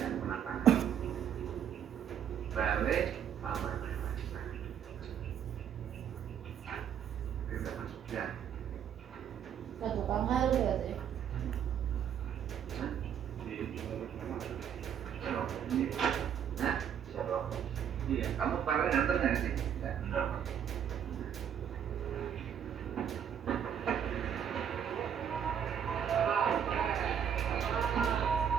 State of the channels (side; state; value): left; quieter; 8.7 dB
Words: penataan balik aman itu udah masuk ya Satu kamar berarti. nah siapa iya kamu kemarin nganter nggak sih enggak.